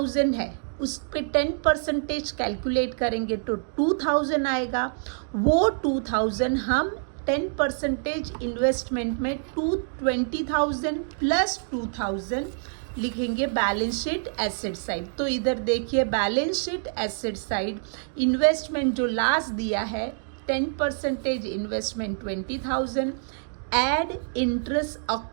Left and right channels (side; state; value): left; silent; digital silence